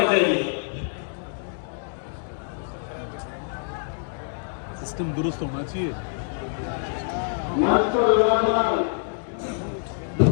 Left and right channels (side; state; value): right; silent; digital silence